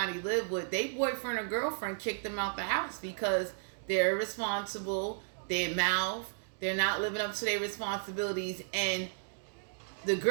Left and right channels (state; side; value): silent; left; digital silence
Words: lived with, they boyfriend or girlfriend kicked them out the house because they're irresponsible, they mouth, they're not living up to their responsibilities, and the